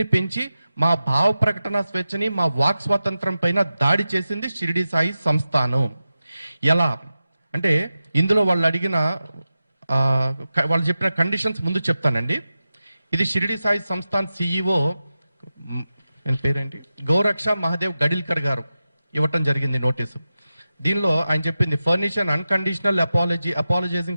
పెంచి మా భావ ప్రకటన స్వేచ్ఛని, మా వాక్ స్వాతంత్రం పైన దాడి చేసింది షిరిడీ సాయి సంస్థానం. ఎలా అంటే, ఇందులో వాళ్ళు అడిగిన వాళ్ళు చెప్పిన కండిషన్స్ ముందు చెప్తానండి. ఇది షిరిడీ సాయి సంస్థాన్ సిఇఓ పేరేంటి, గౌరక్ష మహాదేవ్ గడిల్కర్ గారు ఇవ్వటం జరిగింది నోటీసు. దీనిలో ఆయన చెప్పింది, furnish an unconditional apology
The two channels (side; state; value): both; inverted; correlation -0.93